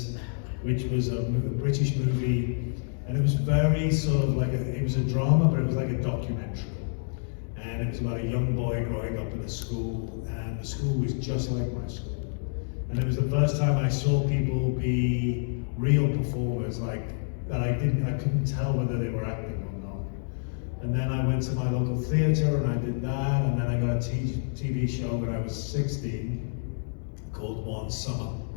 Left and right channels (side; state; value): right; silent; digital silence